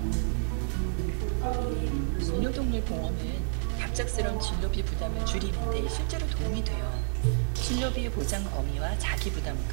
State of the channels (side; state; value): left; silent; 58 dB below the other